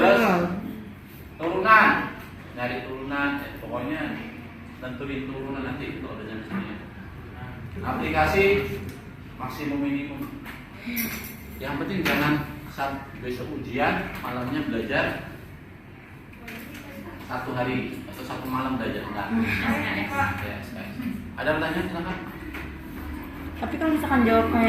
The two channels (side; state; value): both; identical; correlation 1.00